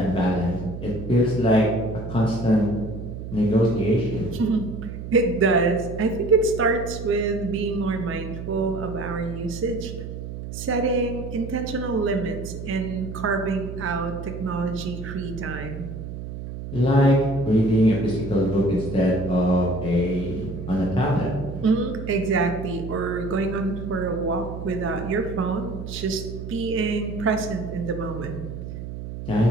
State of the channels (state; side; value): noise; right; hum, 8 dB below the sound